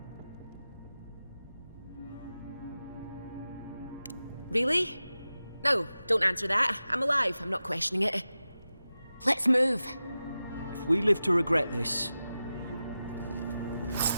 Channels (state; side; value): inverted; both; correlation -0.93